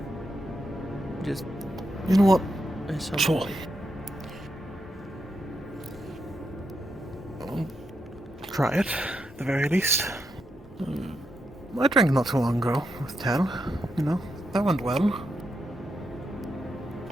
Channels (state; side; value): normal; both; correlation 0.83